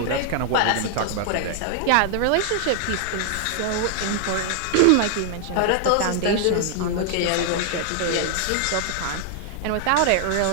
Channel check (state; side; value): different; both; correlation 0.00